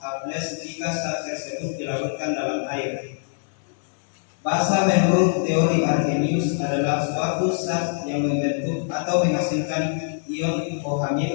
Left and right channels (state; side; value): silent; right; digital silence